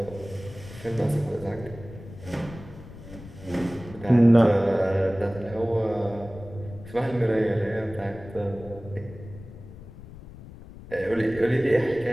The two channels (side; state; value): left; noise; rumble, 16 dB below the sound